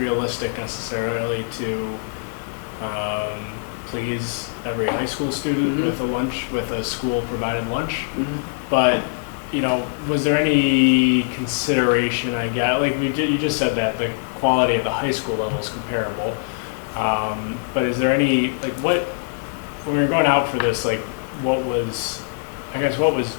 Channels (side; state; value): right; silent; digital silence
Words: necessarily to please every high school student with a school provided lunch, but was there any consideration? I guess you just said that the quality at the high school level is comparable, but is there any when we were going out for this, what was